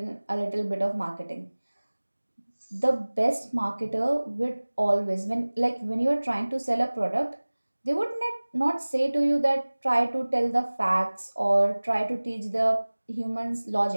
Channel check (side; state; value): both; inverted; correlation -1.00